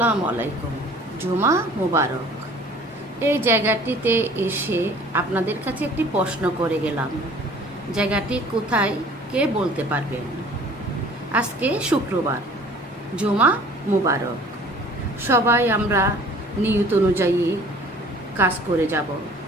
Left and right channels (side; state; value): both; normal; correlation 0.50